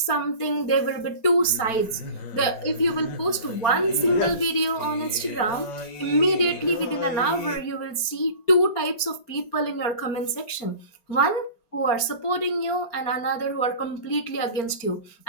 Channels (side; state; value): right; late; 4.4 ms